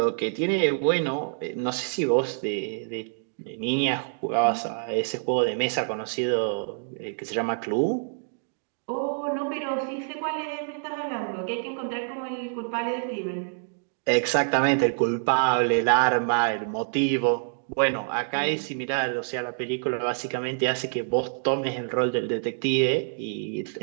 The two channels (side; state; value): left; silent; digital silence